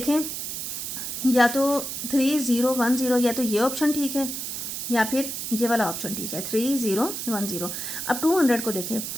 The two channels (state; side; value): noise; right; hiss, 5 dB below the sound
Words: या तो 3010, या तो ये ऑप्शन ठीक है या फिर ये वाला ऑप्शन ठीक है 3010। अब 200 को देखें,